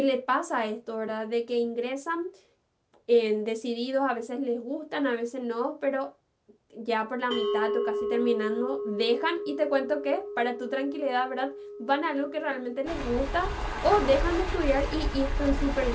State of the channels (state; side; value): identical; both; correlation 1.00